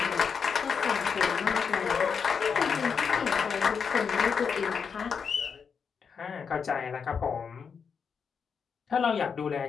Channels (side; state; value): right; quieter; 6.2 dB